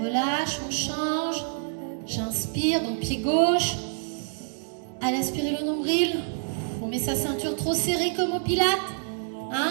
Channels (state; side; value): silent; left; digital silence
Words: relâche, on change. J'inspire, donc pied gauche. Allez, inspirez le nombril. On met sa ceinture trop serrée comme au pilates.